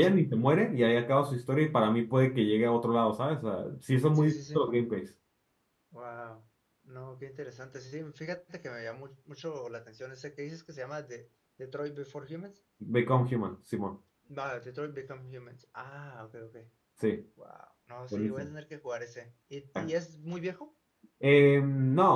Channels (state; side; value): identical; both; correlation 1.00